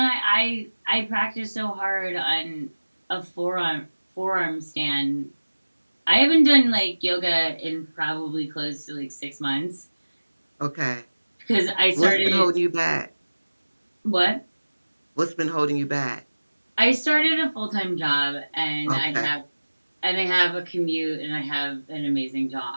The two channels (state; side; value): inverted; both; correlation -1.00